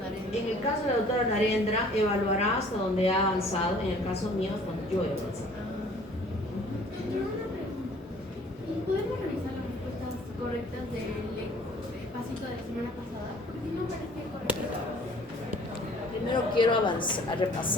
En el caso de la doctora Narendra, evaluará hasta donde ha avanzado. En el caso mío, cuando yo he avanzado. Pero una pregunta. ¿Y podemos revisar las respuestas correctas del pasito de la semana pasada? Porque no parece correcto. Primero quiero avanzar,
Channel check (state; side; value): normal; both; correlation 0.54